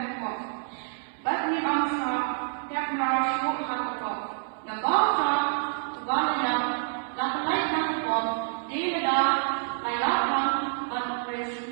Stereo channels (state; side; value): silent; left; 60 dB below the other